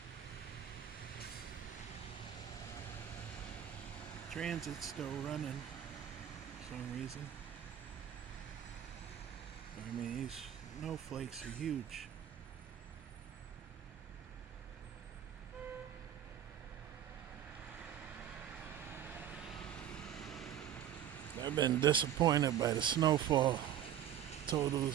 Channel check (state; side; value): quieter; left; 10.3 dB